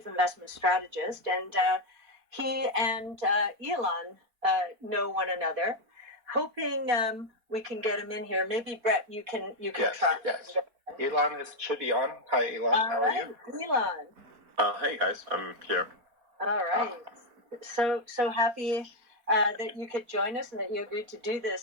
investment strategist, and he and Elon know one another. Hoping we can get him in here. Maybe Brett, you can try. Yes. Elon should be on. Hi, Elon. How are you? Elon. Hey guys, I'm here. All right. So happy that you could join us and that you agreed to do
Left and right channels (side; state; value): left; late; 4.5 ms